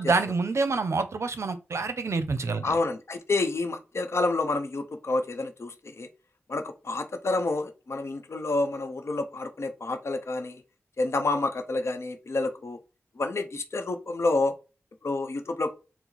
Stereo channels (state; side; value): normal; both; correlation 0.76